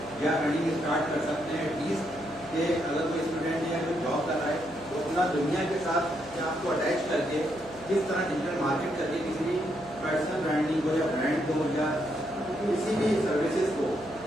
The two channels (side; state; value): right; noise; hum, 22 dB below the sound